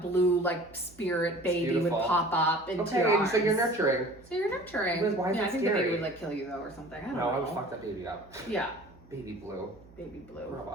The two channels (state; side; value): noise; right; hum, 24 dB below the sound